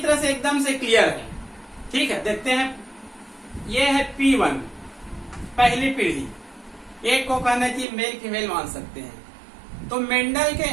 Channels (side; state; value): left; drops out; at 7.9 s